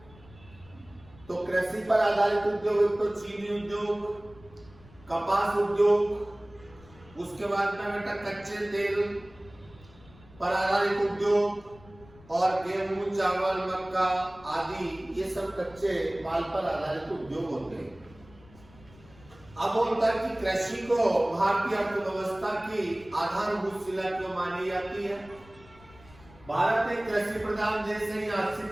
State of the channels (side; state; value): left; noise; rumble, 23 dB below the sound